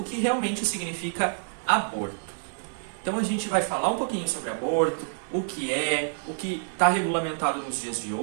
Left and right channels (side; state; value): left; silent; digital silence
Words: que realmente significa aborto. Então a gente vai falar um pouquinho sobre aborto, o que está regulamentado nos dias de